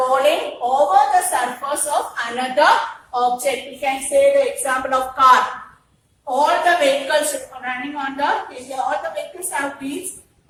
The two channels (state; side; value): identical; both; correlation 1.00